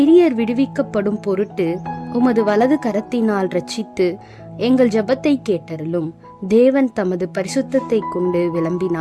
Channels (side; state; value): both; identical; correlation 1.00